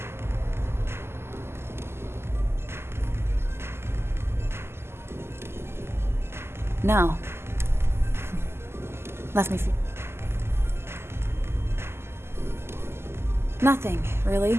No. Left me feel. Nothing,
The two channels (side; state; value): left; late; 0.12 ms